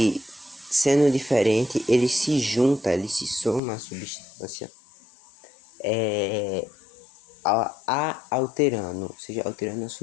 sendo diferente ele se junta, ele se soma à substância, alterando, ou seja, alterando a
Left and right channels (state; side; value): drops out; right; at 3.6 s